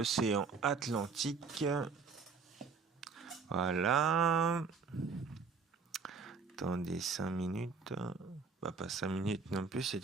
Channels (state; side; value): quieter; left; 5.2 dB